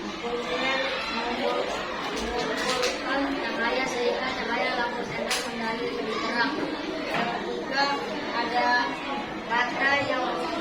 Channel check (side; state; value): both; identical; correlation 1.00